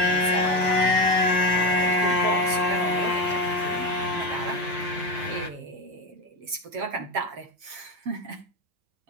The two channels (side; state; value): left; late; 7.4 ms